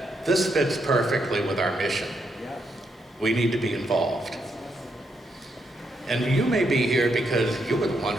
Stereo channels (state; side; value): normal; both; correlation 0.79